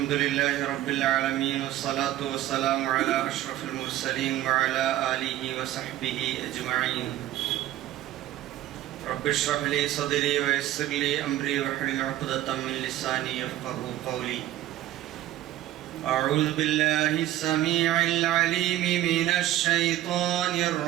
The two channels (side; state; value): left; quieter; 13.6 dB